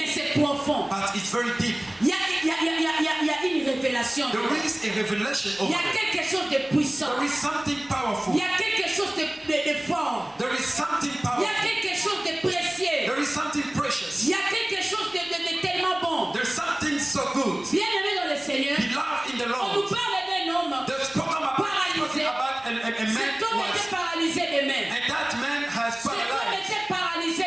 c'est profond. but it's very deep. Il y a une révélation. There is a revelation Il y over a there. quelque chose de puissant. There is something powerful. Il y a quelque chose de fort. There is something Il y powerful. a quelque chose de précieux. There is something precious. Il y a quelque chose de tellement bon. There's something so good. Bien-aimé dans le Seigneur, Beloved in the on nous Lord. parle d'un homme. They've spoken about a man Cet homme était was, paralysé de main. and that man has Cet homme paralyzed. était paralysé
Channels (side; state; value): left; noise; rumble, 30 dB below the sound